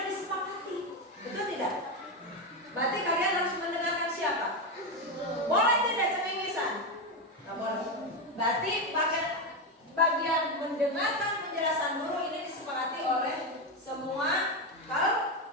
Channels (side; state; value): both; normal; correlation 0.11